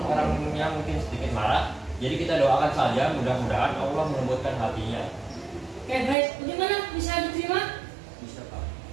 orangnya mungkin sedikit marah. Jadi kita doakan saja, mudah-mudahan Allah melembutkan hatinya. Oke, baik. Bagaimana? Bisa diterima? Bisa Pak.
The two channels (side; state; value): left; drops out; at 6.2 s